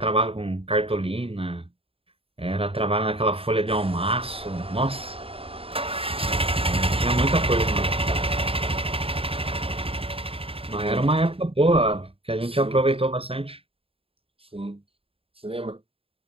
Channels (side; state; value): left; late; 0.27 ms